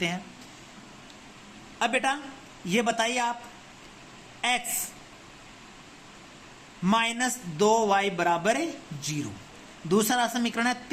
हैं। अब बेटा ये बताइए आप, x -2y बराबर 0। दूसरा समीकरण है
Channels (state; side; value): identical; both; correlation 1.00